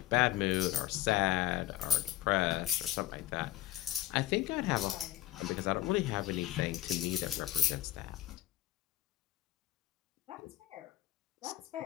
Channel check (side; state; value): right; quieter; 14.3 dB